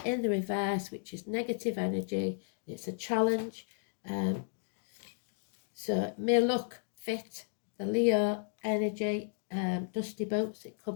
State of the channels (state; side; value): silent; right; digital silence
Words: in the reverse, which is negative energy. It's a challenge. So it may look fit, the Leo energy, dusty boots. It